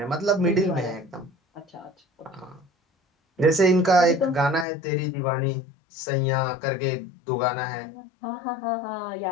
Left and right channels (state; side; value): drops out; right; at 4.7 s